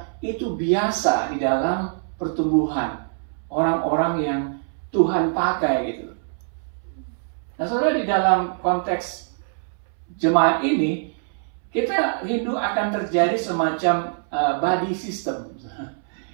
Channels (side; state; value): left; silent; 63 dB below the other